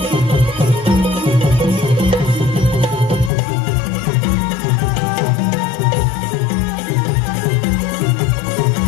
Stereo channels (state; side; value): drops out; right; at 3.3 s